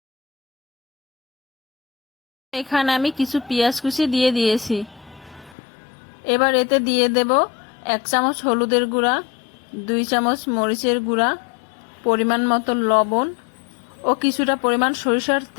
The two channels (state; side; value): drops out; right; at 5.6 s